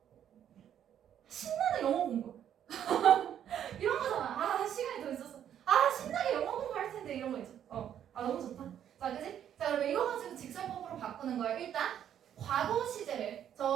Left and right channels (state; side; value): quieter; left; 9.9 dB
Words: 신나는 영어 공부 이런 거잖아. 아 시간이 더 있었어. 아 신나게 영어 공부할 텐데 이런 거 있죠. 아 너무 좋다. 자 그지? 자 그러면 이거 가지고 직설법으로 바꾸는 거예요. 일단 과거 시제를